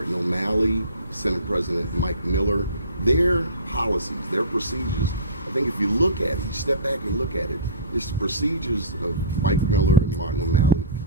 O'Malley, Senate President Mike Miller, their policies, their procedures, I think if you look at it, you step back and look at it, it's the procedures of Mike Miller and Martin O'Malley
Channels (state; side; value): inverted; both; correlation -0.38